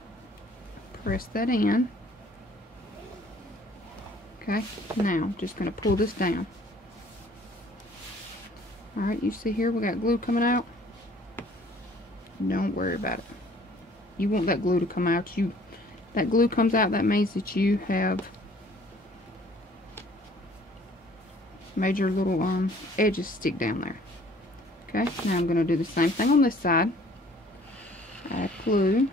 press that in. Okay, now I'm just going to pull this down. Alright, you see here we got glue coming out. Don't worry about it. You want that glue to come out. That glue comes out, that means that you have made your little edges stick down there. Okay, now I'm going to do the same thing on this side. Add glue.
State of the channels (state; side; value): normal; both; correlation 0.55